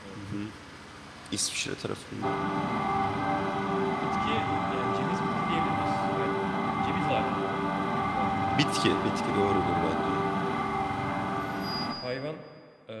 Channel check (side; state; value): both; identical; correlation 1.00